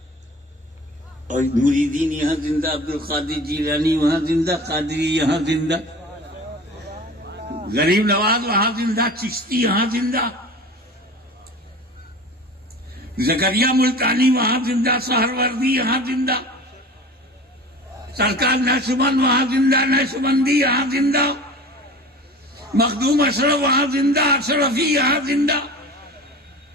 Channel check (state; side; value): normal; both; correlation 0.38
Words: اور مریدین یہاں زندہ، عبد القادر جیلانی وہاں زندہ، قادری یہاں زندہ، غریب نواز وہاں زندہ، چشتی یہاں زندہ، زکریا ملتانی وہاں زندہ، سہروردی یہاں زندہ، سرکار نقشبند وہاں زندہ، نقشبندی یہاں زندہ، مخدوم اشرف وہاں زندہ، اشرفی یہاں زندہ۔